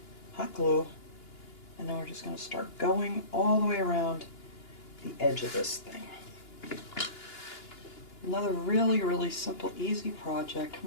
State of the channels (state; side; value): late; right; 2.9 ms